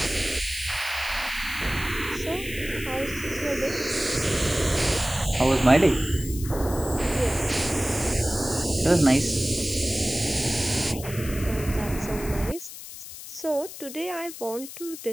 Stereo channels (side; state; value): left; noise; hiss, 12 dB below the sound